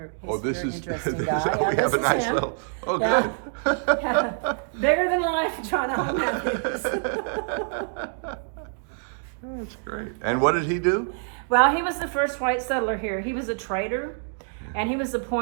Oh, this very is, interesting guy. we Yeah, have a this is nice him. little, oh, Yeah. good. Yeah. Bigger than life, John Allen Matthews. That's great. And what did he do? Well, he was the first white settler here. He was a trader, And he was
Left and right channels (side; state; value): left; silent; digital silence